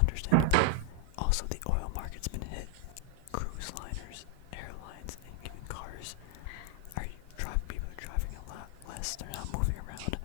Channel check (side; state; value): both; different; correlation 0.00